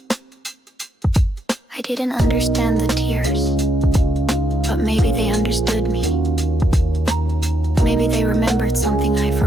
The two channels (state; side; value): normal; both; correlation 0.77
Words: I didn't understand the tears, but maybe they understood me. Maybe they remembered something I